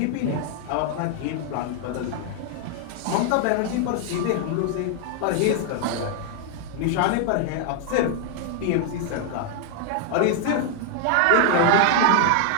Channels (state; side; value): different; both; correlation 0.00